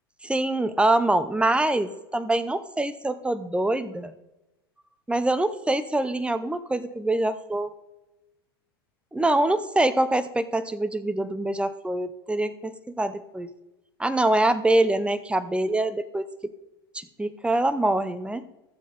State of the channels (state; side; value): normal; both; correlation 0.88